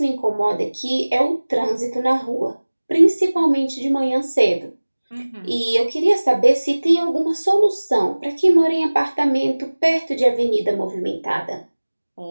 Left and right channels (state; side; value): inverted; both; correlation -1.00